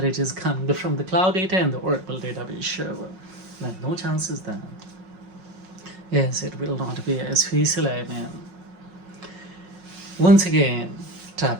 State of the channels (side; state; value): left; late; 5.5 ms